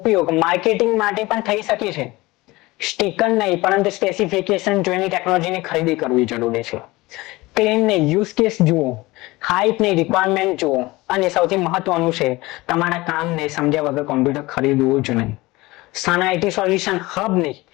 માર્કેટિંગ માટે પણ થઈ શકે છે. સ્ટીકર નહીં પરંતુ સ્પેસિફિકેશન જોઈને ટેકનોલોજીની ખરીદી કરવી જરૂરી છે. ક્લેમ ને યુઝ કેસ જુઓ, હાઇપ ને રિક્વાયરમેન્ટ જુઓ અને સૌથી મહત્વનું છે તમારા કામને સમજ્યા વગર કોમ્પ્યુટર ખરીદવું જ નહીં. સન આઈટી સોલ્યુશન હબની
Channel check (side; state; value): right; quieter; 20.8 dB